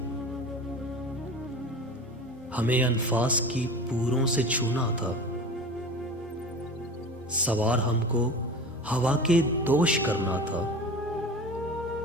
हमें अनफास की पूरों से छूना था, सवार हमको हवा के दोष करना था,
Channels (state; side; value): normal; both; correlation 0.34